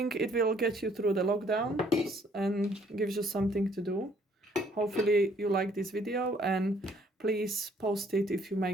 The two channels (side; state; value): both; normal; correlation 0.63